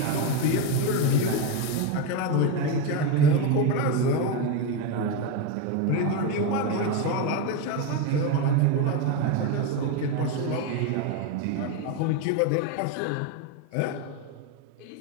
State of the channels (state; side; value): different; both; correlation 0.04